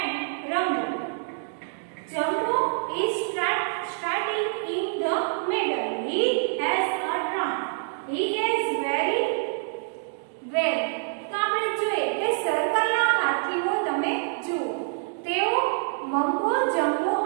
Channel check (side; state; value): left; silent; digital silence